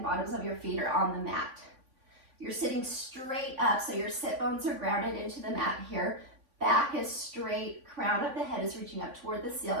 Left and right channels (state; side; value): late; left; 3.5 ms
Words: bottoms of your feet are on the mat. You're sitting straight up, so your sit bones are grounded into the mat here. Back is straight, crown of the head is reaching up toward the